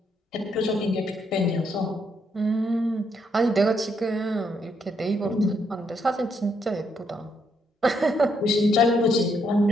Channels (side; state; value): both; normal; correlation 0.75